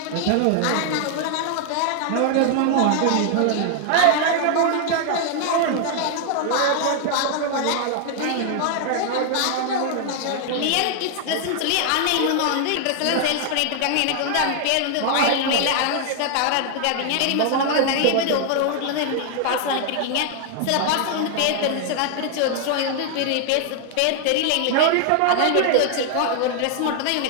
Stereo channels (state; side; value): different; both; correlation 0.00